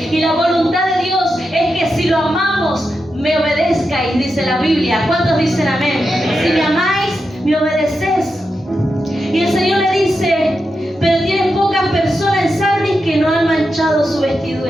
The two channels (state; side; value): normal; both; correlation 0.88